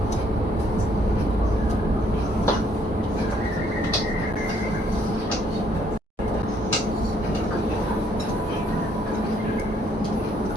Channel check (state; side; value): normal; both; correlation 0.67